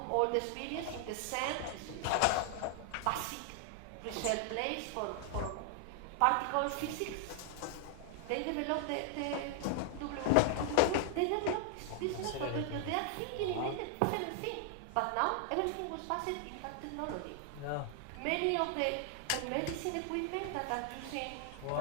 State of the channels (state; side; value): different; both; correlation 0.00